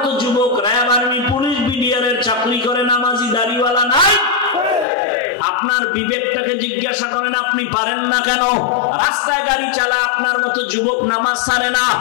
যুবক র্যাব, আর্মি, পুলিশ, বিডিআরের চাকরি করে, নামাজি দাড়িওয়ালা নাই। আপনার বিবেকটাকে জিজ্ঞাসা করেন, আপনি পারেন না কেন? রাস্তায় গাড়ি চালায় আপনার মতো যুবক নামাজ ছাড়ে না,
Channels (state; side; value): drops out; right; at 4.9 s